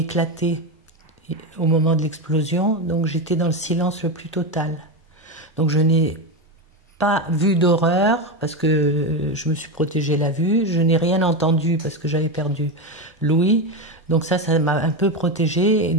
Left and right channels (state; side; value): normal; both; correlation 0.14